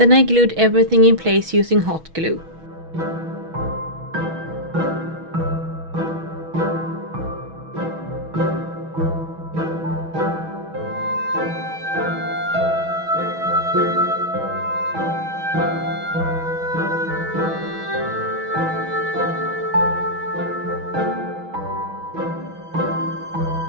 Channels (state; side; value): late; left; 6.2 ms